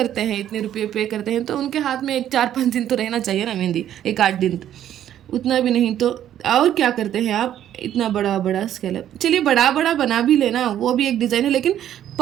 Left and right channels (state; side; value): quieter; left; 11.1 dB